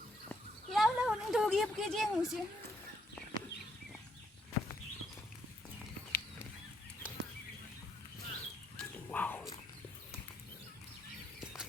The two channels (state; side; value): normal; both; correlation 0.73